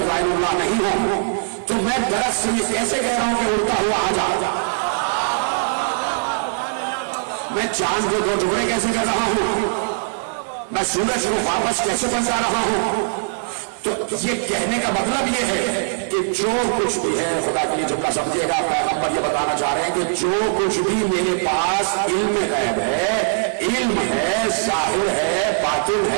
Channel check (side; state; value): left; silent; 61 dB below the other